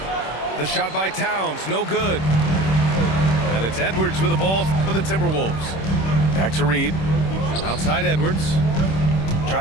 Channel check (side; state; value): right; late; 26 ms